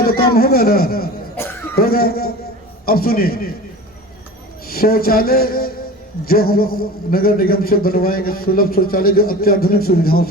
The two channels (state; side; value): normal; both; correlation 0.35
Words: तो काम होगा ना, होगा। अब सुनिए, शौचालय जो हम नगर निगम से बनवाएंगे, सुलभ शौचालय जो अत्याधुनिक सुविधाओं